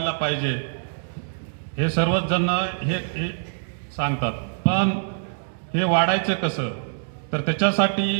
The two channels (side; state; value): left; silent; digital silence